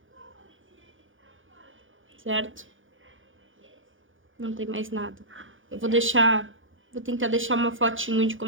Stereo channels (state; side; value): late; left; 0.58 ms